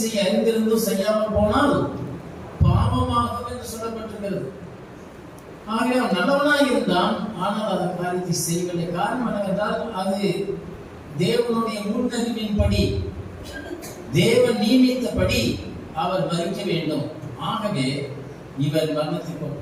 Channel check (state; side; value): identical; both; correlation 1.00